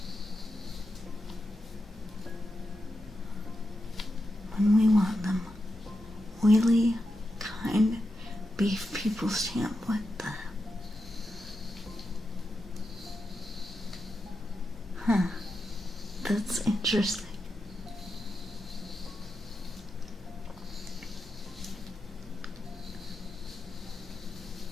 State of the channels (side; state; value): both; normal; correlation 0.87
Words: when we want them. Really kind beef people stamp with the Huh. That's interesting.